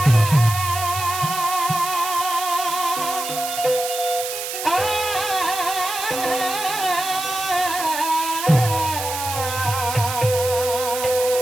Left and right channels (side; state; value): right; noise; hiss, 6 dB below the sound